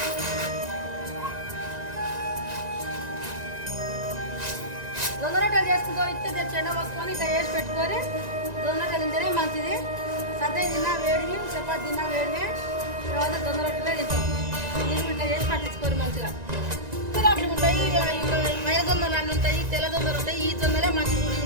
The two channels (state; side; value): late; left; 1.9 ms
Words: జొన్న రొట్టెలు చేసుకుంటాం. ఇస్తే చెండ పోసుకొని ఇట్లా వేసి పెట్టుకొని జొన్న రొట్టెలు తింటేనే మంచిది. సద్ద తిన్నా వేడివి, చపాతి తిన్నా వేడివే, తర్వాత జొన్న రొట్టెలే తింటాం. నీళ్ళు ఇట్లా చేసి పట్టించుకోరు మంచిగా. రొట్టెలు ఉంటాయి, మైల జొన్నలు అన్నీ ఉంటాయి, తెల్ల జొన్నలు ఉంటాయి. ఈ జొన్నలే మంచిది.